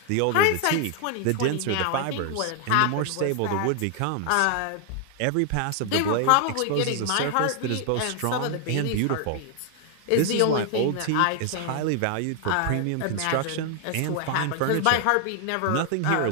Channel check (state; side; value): different; both; correlation 0.00